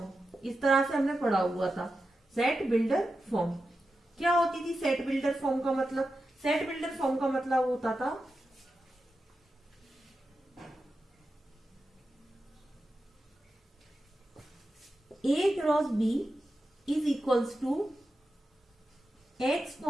इस तरह से हमने पढ़ा हुआ था सेट बिल्डर फॉर्म। क्या होती थी सेट बिल्डर फॉर्म का मतलब? सेट बिल्डर फॉर्म का मतलब होता था A cross B is equals to X,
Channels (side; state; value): both; normal; correlation 0.90